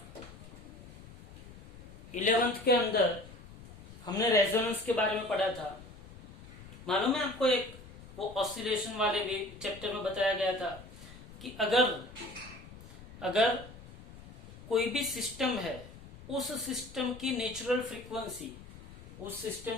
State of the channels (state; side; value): noise; left; rumble, 16 dB below the sound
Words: 11th के अंदर हमने रेजोनेंस के बारे में पढ़ा था. मालूम है आपको, एक वो ऑसिलेशन वाले भी चैप्टर में बताया गया था कि अगर कोई भी सिस्टम है, उस सिस्टम की नेचुरल